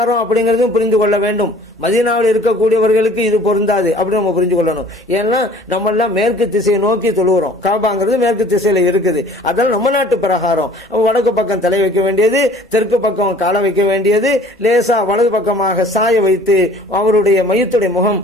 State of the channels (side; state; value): both; normal; correlation 0.51